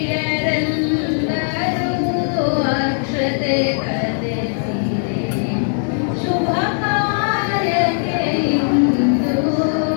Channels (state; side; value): silent; right; digital silence